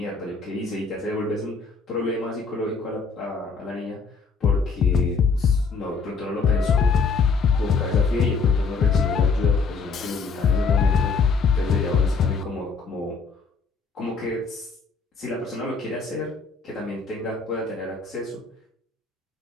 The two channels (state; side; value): quieter; right; 4.8 dB